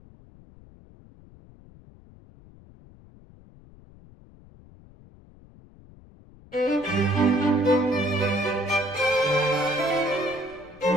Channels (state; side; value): noise; left; rumble, 23 dB below the sound